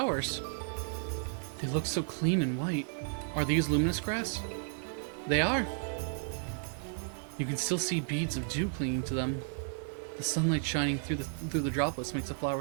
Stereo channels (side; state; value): left; silent; digital silence